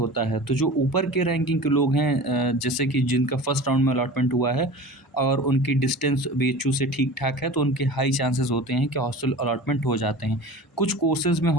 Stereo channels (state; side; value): normal; both; correlation 0.37